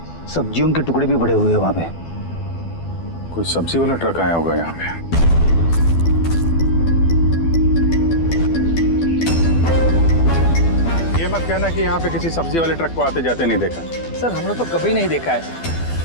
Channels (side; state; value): right; late; 12 ms